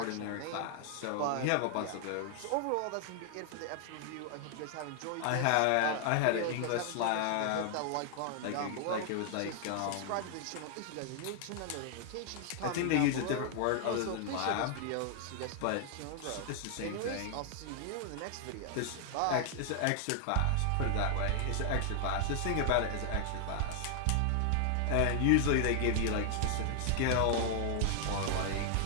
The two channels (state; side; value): different; both; correlation 0.00